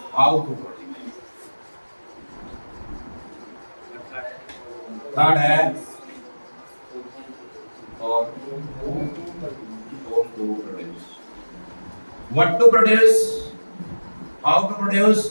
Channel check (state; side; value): inverted; both; correlation -1.00